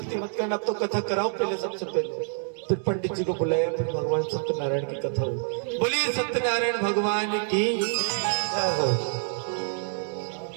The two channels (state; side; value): silent; left; 60 dB below the other